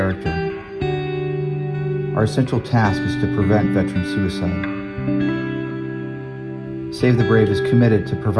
Our essential task is to prevent veteran suicide. Save the Brave is committed to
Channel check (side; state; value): both; identical; correlation 1.00